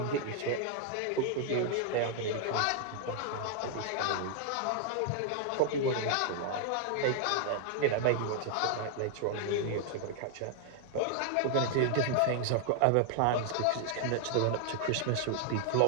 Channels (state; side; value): different; both; correlation 0.00